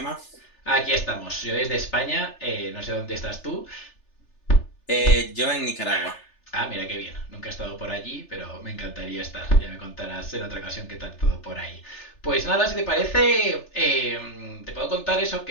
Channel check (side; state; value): right; late; 3.4 ms